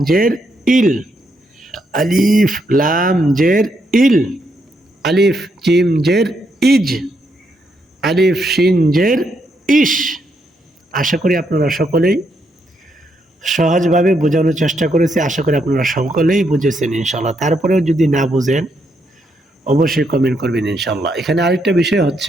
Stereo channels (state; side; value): normal; both; correlation 0.77